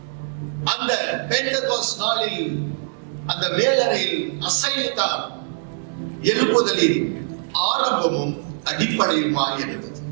அந்த பெந்தகோஸ்ட் நாளில் அந்த மேலறையில் அசைவுதான் எழுப்புதலின் ஆரம்பமும் அடிப்படையுமாய் இருந்தது.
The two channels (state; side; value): silent; left; digital silence